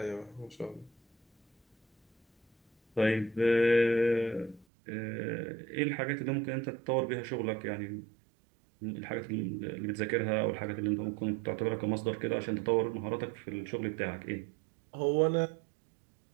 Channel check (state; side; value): drops out; left; at 4.7 s